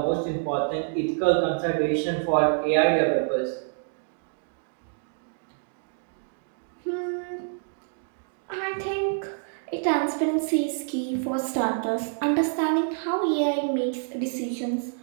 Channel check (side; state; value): left; silent; digital silence